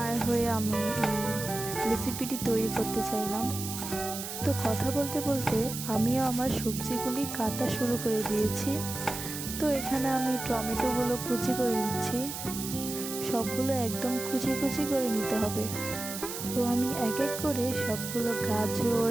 হয়ে আমি এই রেসিপিটি তৈরি করতে চাইলাম। তো কথা বলতে বলতে আমিও আমার সবজিগুলি কাটা শুরু করে দিয়েছি। তো এখানে আমি টমেটোগুলো কুচি করে নিচ্ছি। সবগুলো একদম কুচি কুচি করে নিতে হবে। তো আমি এক এক করে সবগুলো গাজর,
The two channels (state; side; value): noise; right; hiss, 7 dB below the sound